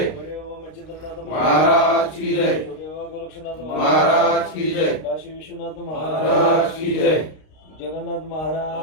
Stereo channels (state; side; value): late; right; 32 ms